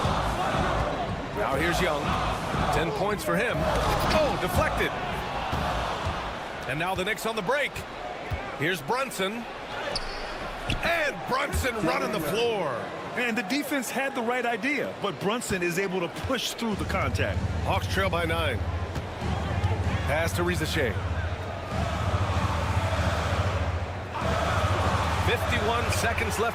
Now here's Young. 10 points for him. Oh, deflected. And now the Knicks on the break. Here's Brunson. And Brunson running the floor. And the defense had the right idea, but Brunson is able to push through the contact. Hawks trail by 9. Pass to Rizachet. 51 seconds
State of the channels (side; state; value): both; identical; correlation 1.00